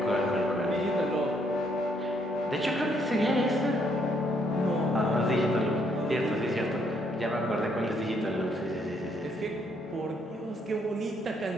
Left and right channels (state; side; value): normal; both; correlation 0.70